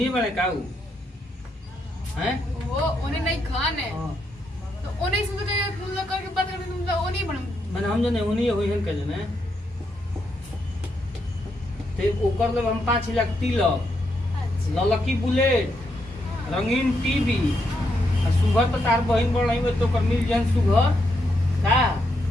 बड़े काऊ हैं वो उन्हें नहीं खान है तो उन्हें समझ के तुम लोग करके बात करके तुम लोग नहीं बन मैंने हम जने उन्हीं होई हन के जने ते ओकर ले हम 5 लाख तिलक ललकी बुलेट रंगीन टीवी आ सुगर तो तार बहिन बड़ नहीं तो कर मिल जन सुगर का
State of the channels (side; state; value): both; normal; correlation 0.80